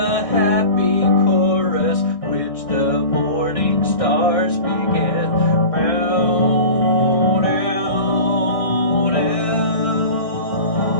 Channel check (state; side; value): late; right; 1.6 ms